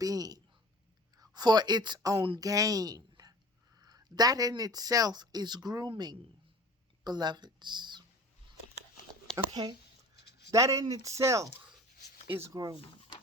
for its own gain. That in itself is grooming, beloveds. Okay? That in itself is grooming.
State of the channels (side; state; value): both; normal; correlation 0.42